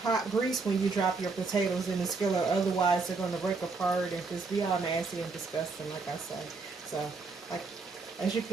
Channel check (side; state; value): left; quieter; 4.2 dB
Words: grease when you drop your potatoes in the skillet, otherwise they're going to break apart and just be all nasty and disgusting, like I say. So, like, as you